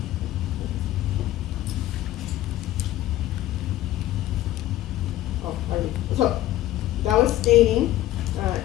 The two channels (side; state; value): right; quieter; 14.7 dB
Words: So that was staining,